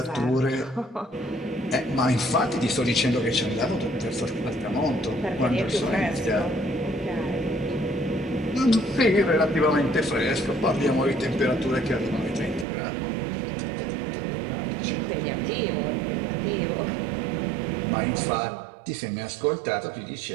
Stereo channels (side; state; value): left; drops out; at 12.7 s